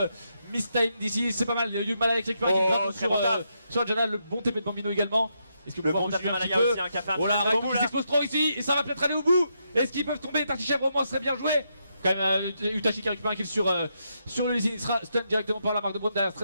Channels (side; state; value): both; inverted; correlation -0.81